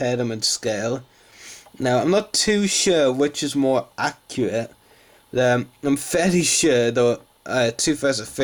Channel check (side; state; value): both; identical; correlation 1.00